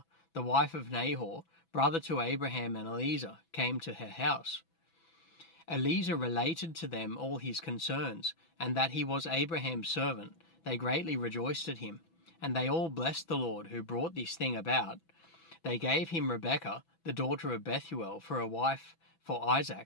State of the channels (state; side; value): late; right; 6.0 ms